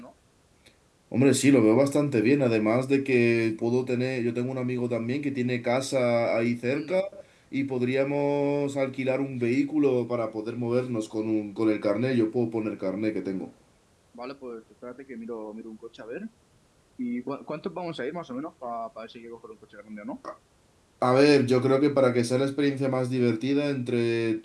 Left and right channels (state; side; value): identical; both; correlation 1.00